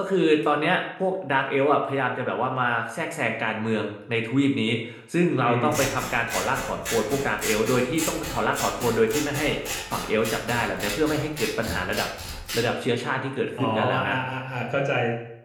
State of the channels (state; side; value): identical; both; correlation 1.00